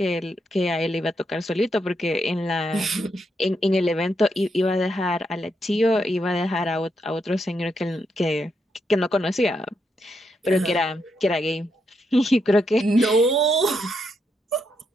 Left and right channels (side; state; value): both; normal; correlation 0.80